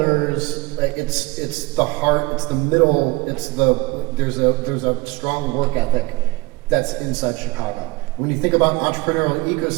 It's the heart. It's the middle. There's a strong work ethic that's inside Chicago. When you think about entrepreneurial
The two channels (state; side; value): quieter; left; 22.4 dB